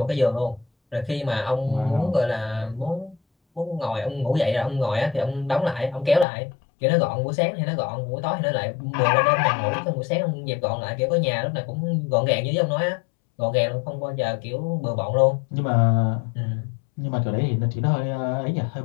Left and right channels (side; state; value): right; drops out; at 6.2 s